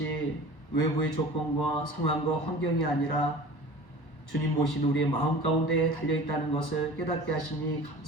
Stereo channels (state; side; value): late; right; 1.1 ms